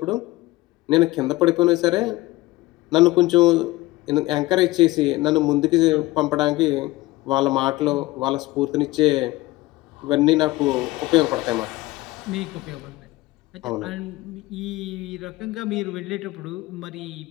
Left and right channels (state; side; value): quieter; right; 19.3 dB